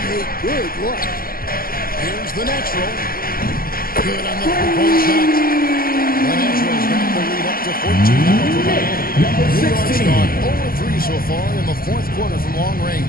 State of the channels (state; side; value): late; right; 0.42 ms